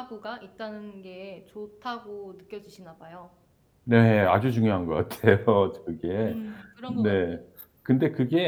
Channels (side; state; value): both; identical; correlation 1.00